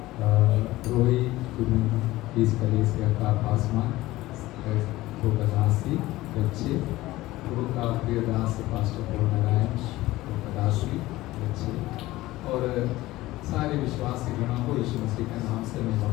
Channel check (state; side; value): quieter; right; 17.6 dB